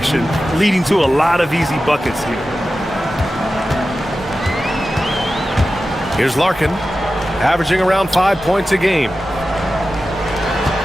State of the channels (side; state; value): both; normal; correlation 0.93